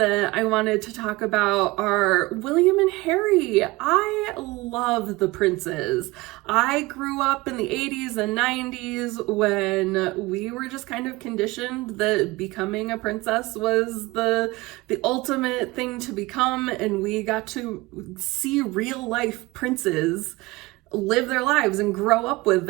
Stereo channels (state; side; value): quieter; left; 21.7 dB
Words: I wanted to talk about are William and Harry. I love the princes. I grew up in the 80s and 90s when we were just kind of conditioned that becoming a princess was the ultimate thing to become, and we got to see real life princes live their lives and grow up with